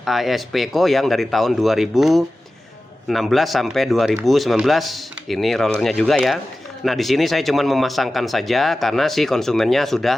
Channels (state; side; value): normal; both; correlation 0.95